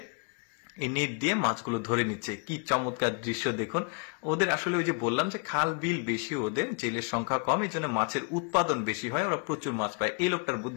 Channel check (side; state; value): right; quieter; 36.7 dB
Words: এই নেট দিয়ে মাছগুলো ধরে নিচ্ছে। কি চমৎকার দৃশ্য দেখুন। ওদের আসলে ওই যে বললাম যে খাল বিল বেশি, ওদের জেলের সংখ্যা কম, এই জন্য মাছের উৎপাদন বেশি হয়, ওরা প্রচুর মাছ পায়। এই লোকটার